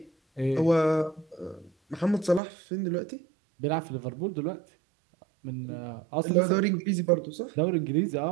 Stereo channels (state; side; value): drops out; left; at 2.4 s